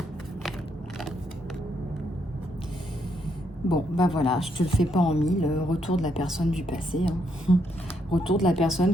Bon, bah voilà, je te le fais pas en mille. Retour de la personne du passé. Hein. Retour de la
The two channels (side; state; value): both; normal; correlation 0.76